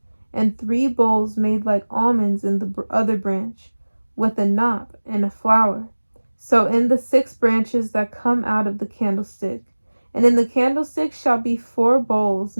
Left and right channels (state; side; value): inverted; both; correlation -1.00